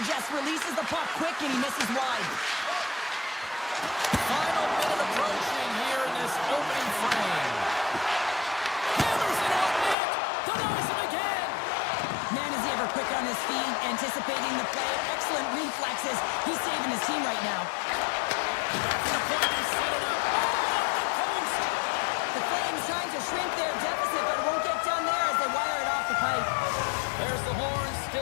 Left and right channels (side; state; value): right; drops out; at 10.0 s